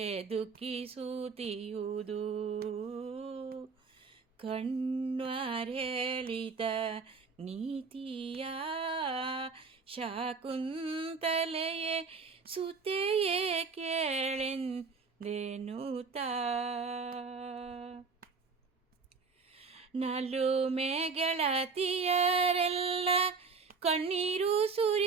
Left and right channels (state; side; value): quieter; left; 4.9 dB